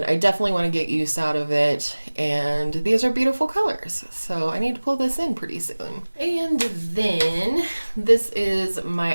I definitely want to get use out of it, and these are beautiful colors, so I need to pull this in pretty soon. And then this is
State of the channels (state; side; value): inverted; both; correlation -1.00